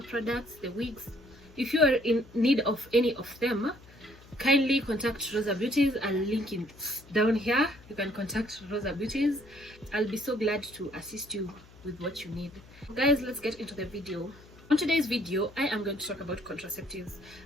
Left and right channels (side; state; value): left; noise; hum, 23 dB below the sound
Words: products, the wigs, if you are in need of any of them, kindly contact Rosa Beauties. I'll link it down here. You can contact Rosa Beauties. I'll be so glad to assist you with what you need. Guys, let's get into the video. On today's video, I am going to talk about contraceptives,